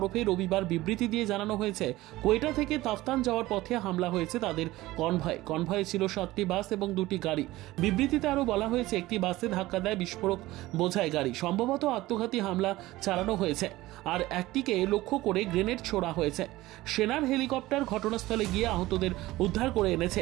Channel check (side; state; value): left; quieter; 17.8 dB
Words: রবিবার বিবৃতি দিয়ে জানানো হয়েছে কোয়েটা থেকে তাফতান যাওয়ার পথে হামলা হয়েছে তাদের কনভয়ে ছিল 7টি বাস এবং 2টি গাড়ি। বিবৃতিতে আরো বলা হয়েছে একটি বাসে ধাক্কা দেয় বিস্ফোরক বোঝাই গাড়ি, সম্ভবত আত্মঘাতী হামলা চালানো হয়েছে, আর একটিকে লক্ষ্য করে গ্রেনেড ছোড়া হয়েছে। সেনার হেলিকপ্টার ঘটনাস্থলে গিয়ে আহতদের উদ্ধার করে এনেছে,